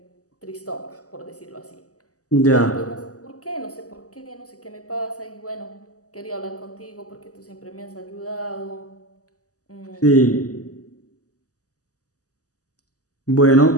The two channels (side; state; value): right; late; 0.66 ms